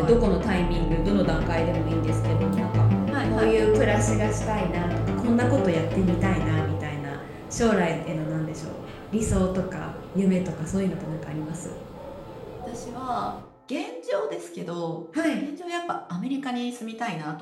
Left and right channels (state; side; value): identical; both; correlation 1.00